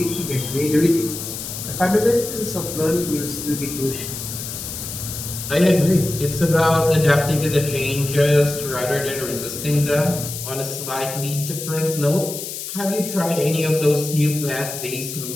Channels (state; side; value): noise; left; hiss, 7 dB below the sound